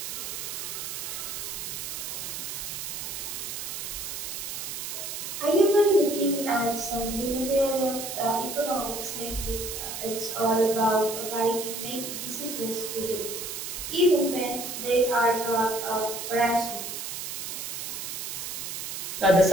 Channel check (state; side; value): noise; right; hiss, 5 dB below the sound